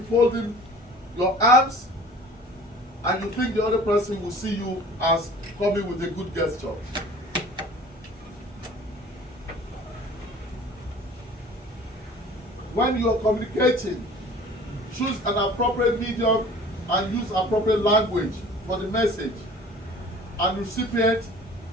your arms and you think the other person will see you as coming with a good gesture. When you are communicating, choose an appropriate medium and use appropriate language for the message and recipient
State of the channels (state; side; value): normal; both; correlation 0.46